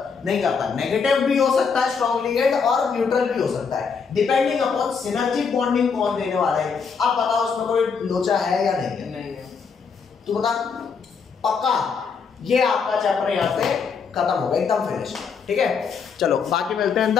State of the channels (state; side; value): quieter; right; 5.8 dB